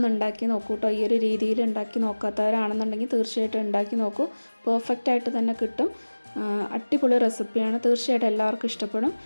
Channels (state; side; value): inverted; both; correlation -1.00